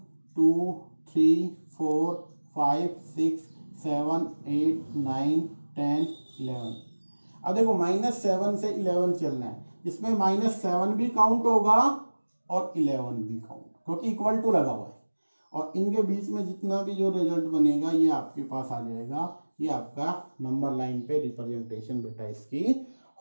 2 3 4 5 6 7 8 9 10 11। अब देखो -7 से 11 चलना है, इसमें -7 भी काउंट होगा और 11 भी काउंट, क्योंकि इक्वल टू लगा हुआ है, और इनके बीच में जितना भी जो रिजल्ट बनेगा ये आपके पास आ जाएगा, ये आपका नंबर लाइन पे रिप्रेजेंटेशन बेटा इसकी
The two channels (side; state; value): both; inverted; correlation -1.00